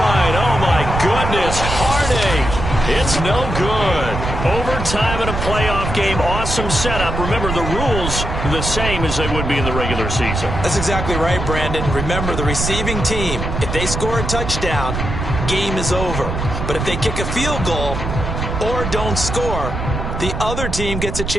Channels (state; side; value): noise; right; rumble, 4 dB below the sound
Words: Oh, my goodness. Heartache. It's no good. Overtime in a playoff game. Awesome setup. Remember, the rules are the same as they would be in the regular season. That's exactly right, Brandon. Remember, the receiving team, if they score a touchdown, game is over. But if they kick a field goal or don't score, the other team gets a